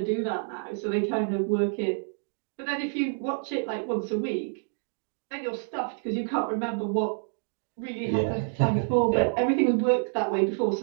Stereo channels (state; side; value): silent; left; digital silence